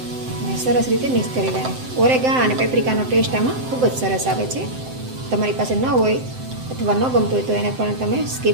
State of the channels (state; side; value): late; left; 7.8 ms